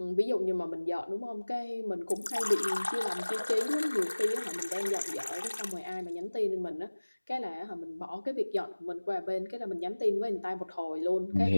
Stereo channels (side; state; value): both; inverted; correlation -1.00